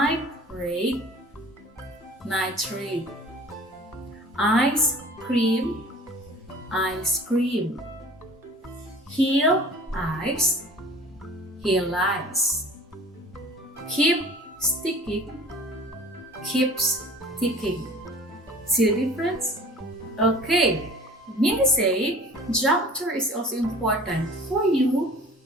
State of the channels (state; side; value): normal; both; correlation 0.45